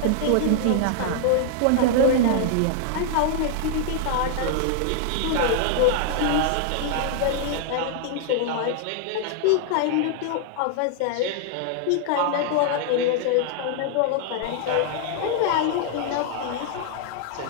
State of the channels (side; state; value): both; different; correlation -0.01